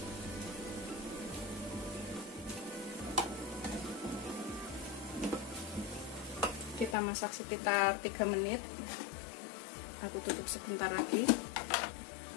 Kita masak sekitar 3 menit. Aku tutup sebentar lagi.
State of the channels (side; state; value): right; drops out; at 7.0 s